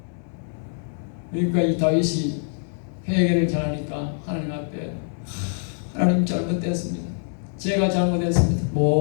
그러니까 이 다윗이 회개를 잘하니까 하나님 앞에 하나님 잘못됐습니다. 제가 잘못했습니다.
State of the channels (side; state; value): right; silent; 62 dB below the other